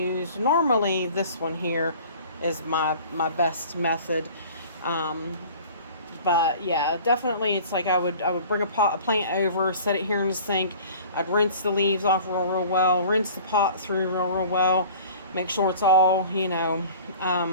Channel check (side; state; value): both; inverted; correlation -0.45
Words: Normally this one here is my best method. But yeah, definitely it's like I would bring a plant over, set it here in the sink. I'd rinse the leaves off real well, rinse the pot through real well, make sure it's all,